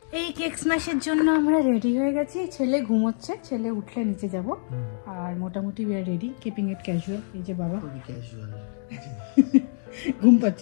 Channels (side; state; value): right; silent; digital silence